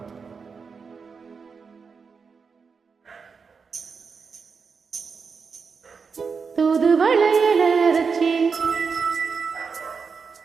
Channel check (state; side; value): quieter; left; 5.4 dB